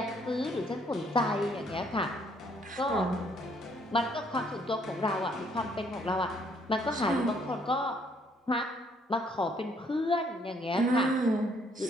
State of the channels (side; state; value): both; normal; correlation 0.66